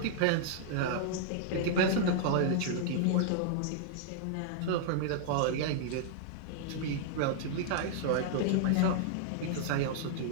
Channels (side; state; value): both; different; correlation -0.01